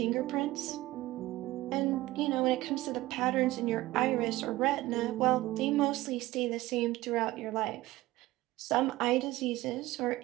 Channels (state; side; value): quieter; left; 17.8 dB